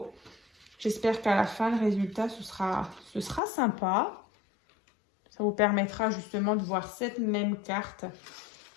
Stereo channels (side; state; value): right; drops out; at 3.4 s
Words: J'espère qu'à la fin, le résultat, ce sera sympa. Ça vous permettra justement de voir cette même carte